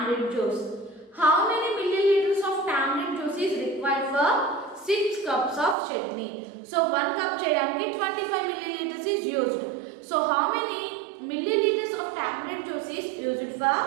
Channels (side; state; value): left; drops out; at 5.8 s